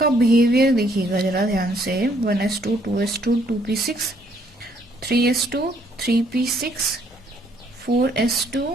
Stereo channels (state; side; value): normal; both; correlation 0.67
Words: बिहेवियर देखिएगा जरा ध्यान से 1s2 2s2 2p6 3s2 3p6 4s2